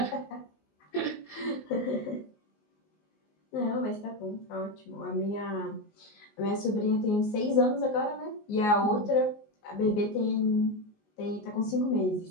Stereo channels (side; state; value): right; late; 19 ms